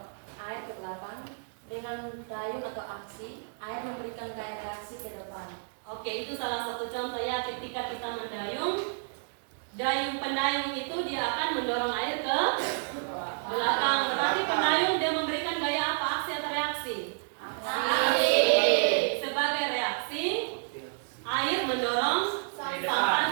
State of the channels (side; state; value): left; silent; digital silence